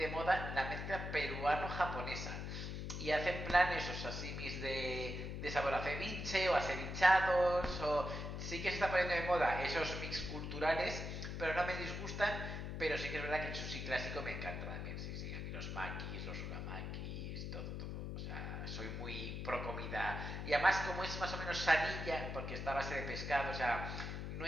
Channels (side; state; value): left; noise; hum, 5 dB below the sound